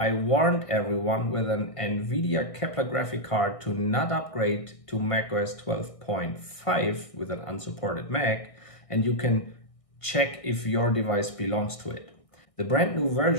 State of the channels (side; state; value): right; late; 1.6 ms